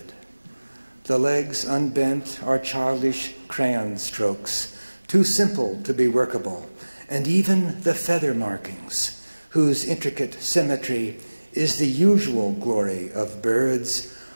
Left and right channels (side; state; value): both; inverted; correlation -1.00